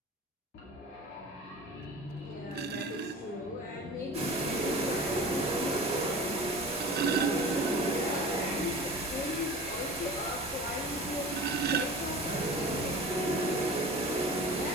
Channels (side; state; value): both; normal; correlation 0.37